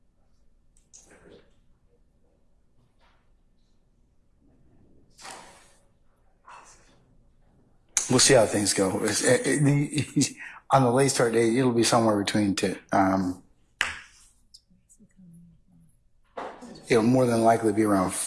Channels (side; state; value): both; identical; correlation 1.00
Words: We'll see how things go. On the late start date, it'll be somewhere between it'll more than likely be around